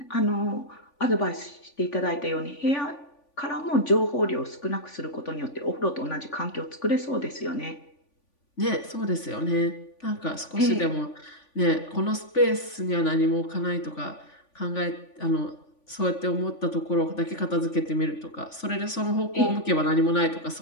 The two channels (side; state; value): right; late; 3.5 ms